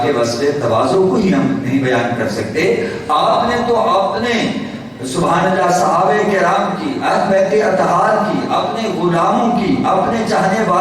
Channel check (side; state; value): both; identical; correlation 1.00